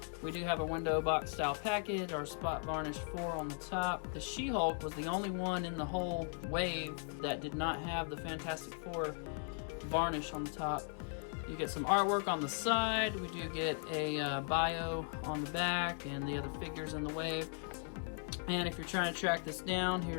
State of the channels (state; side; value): silent; right; 52 dB below the other